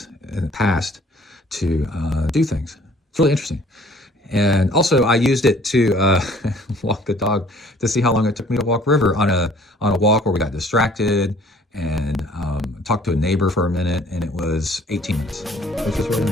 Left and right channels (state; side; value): normal; both; correlation 0.55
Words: in the past to do things. It's really interesting. And also I used it to walk the dog to see how long it took me to walk River on a walk where we got distracted, and talked to a neighbor for a minute, and it was 18 minutes, which was really